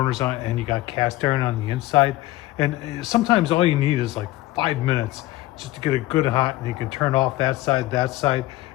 on and you got cast iron on the inside, and sometimes all you need is like 5 minutes just to get it good hot, and you can turn off that side,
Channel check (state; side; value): quieter; right; 17.1 dB